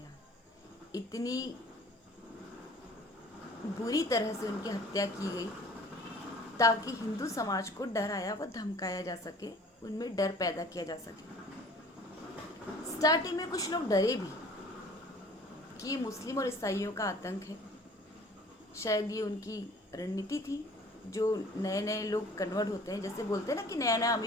इतनी बुरी तरह से उनकी हत्या की गई ताकि हिंदू समाज को डराया व धमकाया जा सके, उनमें डर पैदा किया जा सके। स्टार्टिंग में कुछ लोग डरे भी कि ये मुस्लिम और ईसाइयों का आतंक है। शायद ये उनकी रणनीति थी। जो नए नए लोग कन्वर्ट होते हैं, जैसे बोलते हैं ना कि नया नया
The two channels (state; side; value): normal; both; correlation 0.49